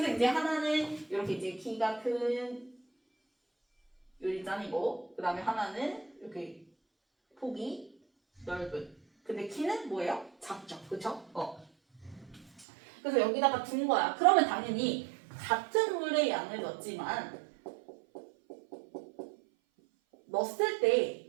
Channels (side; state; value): left; drops out; at 12.7 s